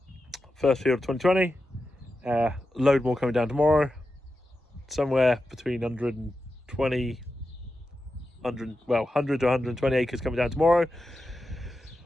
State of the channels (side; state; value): both; normal; correlation 0.90